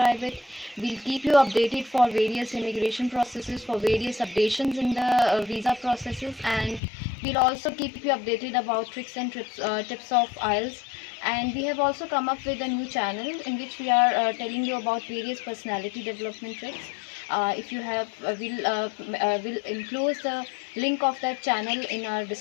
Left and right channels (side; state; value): right; drops out; at 6.8 s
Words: it. We'll keep you updated for various immigration processes, for various updations in the visa processes, and we'll also keep you updated about tricks and tips of IELTS. And we have also come up with a new channel in which we are telling you about various personality development tricks. If you have will enclose the link of that channel in our